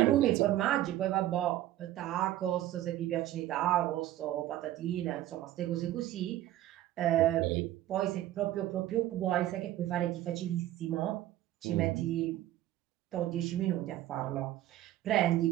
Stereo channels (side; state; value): left; quieter; 14.0 dB